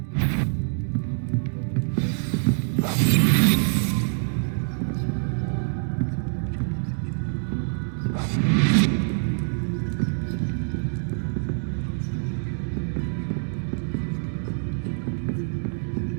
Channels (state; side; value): silent; left; digital silence